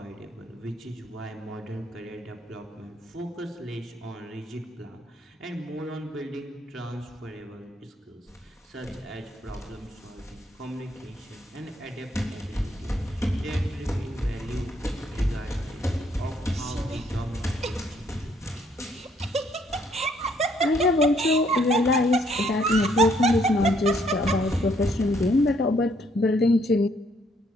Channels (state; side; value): normal; both; correlation 0.68